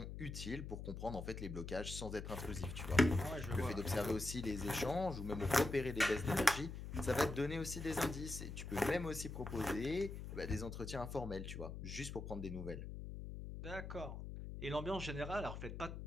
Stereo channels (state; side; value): noise; left; hum, 7 dB below the sound